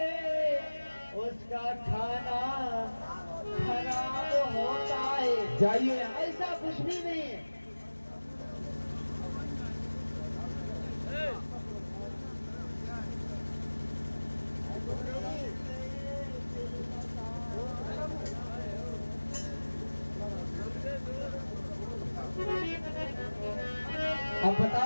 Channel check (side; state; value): both; inverted; correlation -1.00